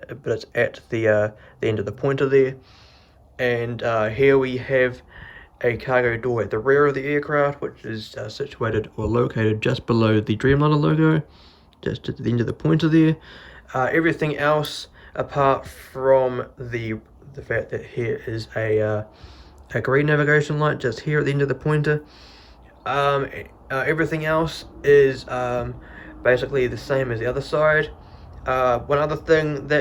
it's at the end of the pointer there. And here we have a cargo door at the rear of the aircraft, which is situated or located just below the Dreamliner logo, just at the end of the pointer there. Everything else, apart from the fact that here is a green navigation light just here at the end of the pointer, everything else is basically the same as the other side. One other thing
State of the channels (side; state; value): both; identical; correlation 1.00